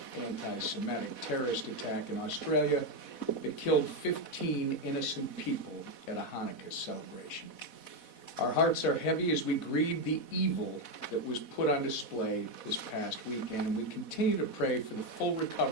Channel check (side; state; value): right; late; 4.1 ms